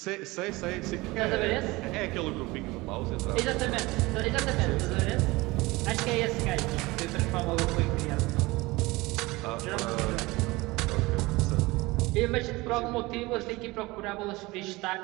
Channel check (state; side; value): quieter; left; 21.8 dB